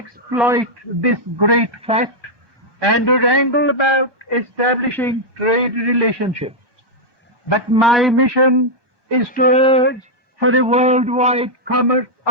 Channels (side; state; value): left; late; 1.2 ms